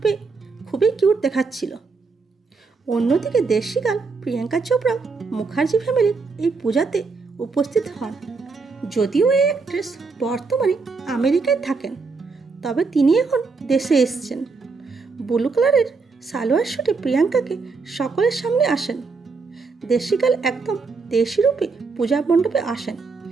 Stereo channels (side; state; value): left; quieter; 4.4 dB